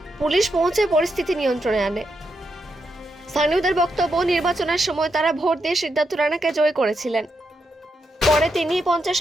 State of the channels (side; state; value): both; normal; correlation 0.83